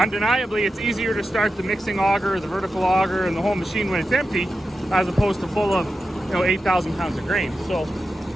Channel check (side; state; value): both; normal; correlation 0.90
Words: it's easier to start the mixing auger, the vertical auger, and the whole machine when it's empty, as opposed to full of 8,000 pounds of grain. So